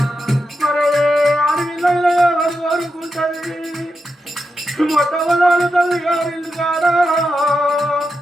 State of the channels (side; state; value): both; normal; correlation 0.87